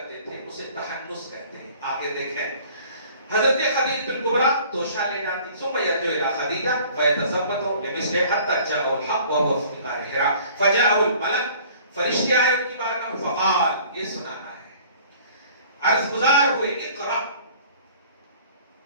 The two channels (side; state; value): both; inverted; correlation -0.51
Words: تھے اسے تحنس کہتے ہیں. آگے دیکھیں، حضرت خدیجہ الکبریٰ توشہ لے جاتی، ثم یرجع الی خدیجہ فیتزوج لمثلہ حتی جاءہ الحق وهو فی غار حراء فجاءہ الملک. فرشتے آئے ان کی بارگاہ میں، فقال، یہ سنانا ہے، عرض گزار ہوئے، اقرا،